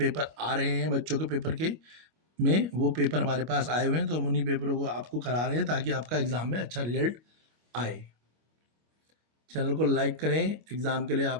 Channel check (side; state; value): left; late; 25 ms